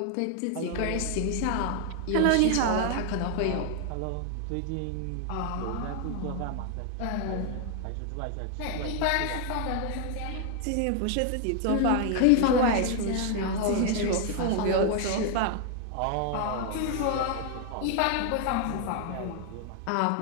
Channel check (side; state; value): both; different; correlation 0.00